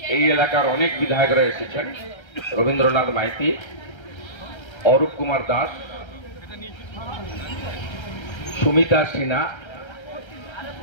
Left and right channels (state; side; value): late; right; 1.3 ms